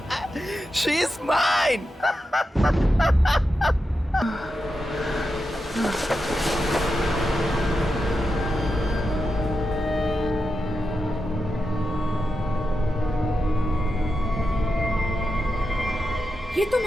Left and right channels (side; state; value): both; normal; correlation 0.88